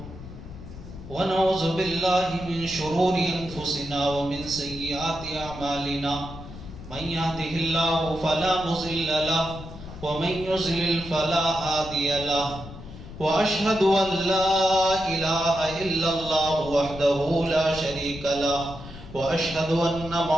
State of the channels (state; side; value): noise; left; rumble, 14 dB below the sound